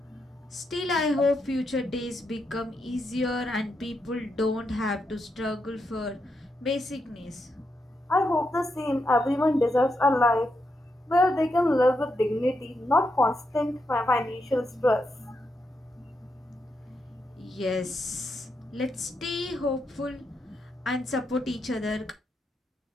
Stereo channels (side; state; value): both; normal; correlation 0.83